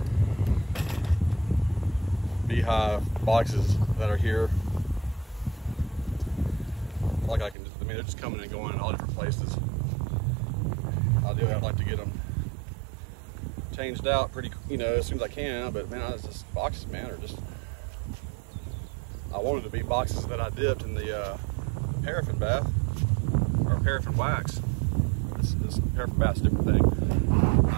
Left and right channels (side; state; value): left; drops out; at 7.6 s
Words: beehive boxes that are here. Like I mean, they're just coming and going in all different places. Ideally, I'd like to get them changed out pretty, as soon as I can. But man, it's just boxes, man, are just. I wanted to be boxes that I dipped in the paraffin bath or paraffin wax. This paraffin bath's a different thing.